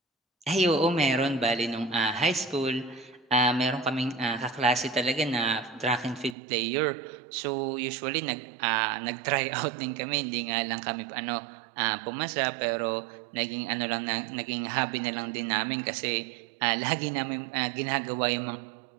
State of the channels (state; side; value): drops out; left; at 6.4 s